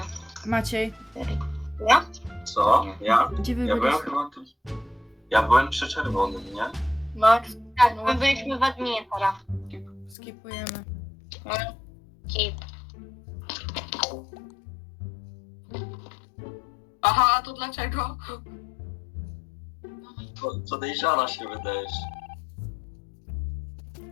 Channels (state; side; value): drops out; right; at 10.2 s